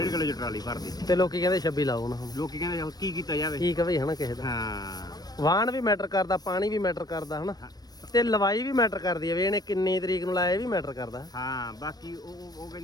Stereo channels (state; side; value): late; right; 0.19 ms